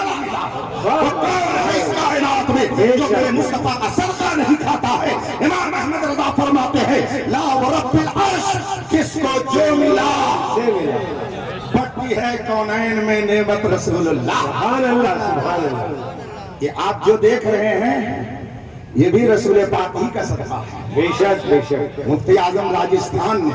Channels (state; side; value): identical; both; correlation 1.00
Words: نہ ملا، وہ کون ہے اس کائنات میں جو میرے مصطفیٰ کا صدقہ نہیں کھاتا ہے؟ امام احمد رضا فرماتے ہیں لا ورب العرش، جس کو جو ملا بڑھتی ہے کونین میں نعمت رسول اللہ۔ سبحان اللہ، سبحان اللہ۔ یہ آپ جو دیکھ رہے ہیں یہ بھی رسول پاک ہی کا صدقہ ہے۔ بے شک، بے شک۔ مفتی اعظم راجستھان